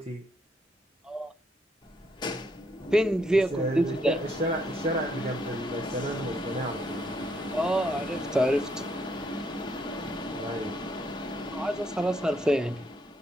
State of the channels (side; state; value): both; normal; correlation 0.73